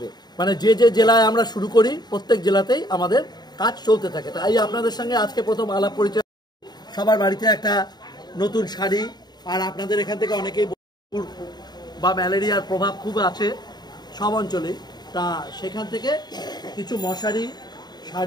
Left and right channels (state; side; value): late; right; 0.20 ms